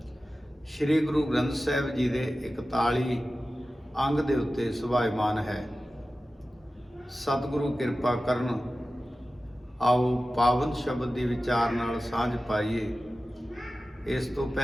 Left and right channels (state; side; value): normal; both; correlation 0.95